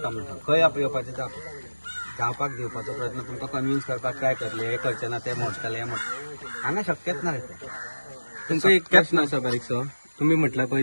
म्हणटा खंय येवपाचें जावपाक दिवपाचो प्रयत्न तुमकां कन्विन्स करपाक ट्राय करतले हे करचे ना ते मोडटले हे मोडटले हांगा शक्यच ना तुमकां एक प्रश्न आसा बारीकसो तुम्ही म्हटला पळय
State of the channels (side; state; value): both; inverted; correlation -1.00